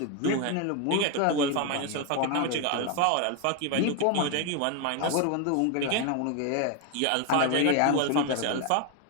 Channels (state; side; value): different; both; correlation 0.01